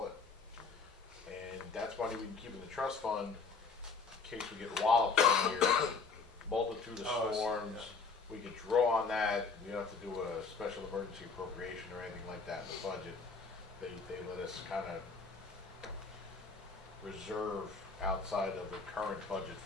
it. And that's money we can keep in the trust fund in case we get walloped one year, multitude of Oh, I see, storms. yeah. We could draw on that. We don't have to do a special emergency appropriation or anything like that in the budget. They let us kind of reserve outside of the current budget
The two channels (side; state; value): right; quieter; 4.7 dB